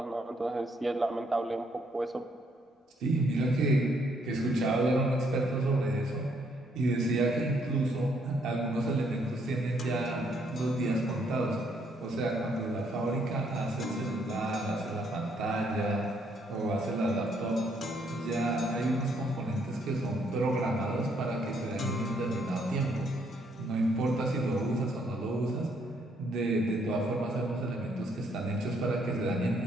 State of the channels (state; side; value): normal; both; correlation 0.70